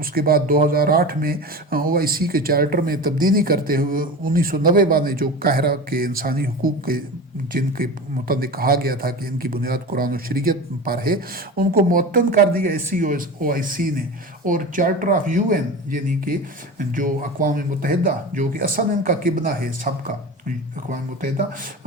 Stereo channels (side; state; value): both; normal; correlation 0.30